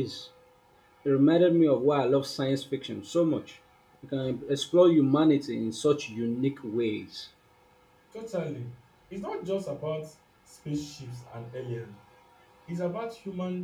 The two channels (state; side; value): identical; both; correlation 1.00